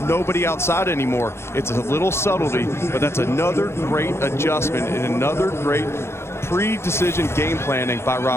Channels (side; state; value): right; late; 0.12 ms